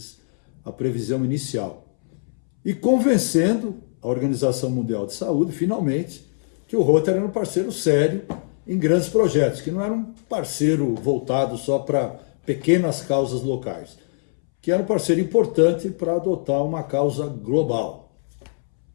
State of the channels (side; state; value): right; silent; 64 dB below the other